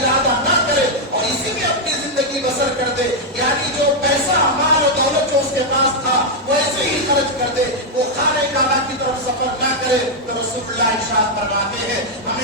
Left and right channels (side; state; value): both; normal; correlation -0.01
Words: نہ کرے اور اسی میں اپنی زندگی بسر کر دے، یعنی جو پیسہ، مال و دولت جو اس کے پاس تھا وہ ایسے ہی خرچ کر دے، وہ خانہ کعبہ کی طرف سفر نہ کرے، تو رسول اللہ ارشاد فرماتے ہیں